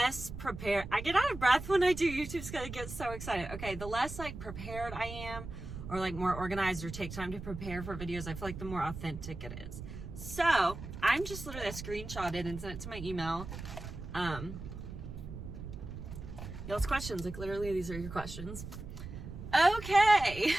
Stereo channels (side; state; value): right; noise; rumble, 10 dB below the sound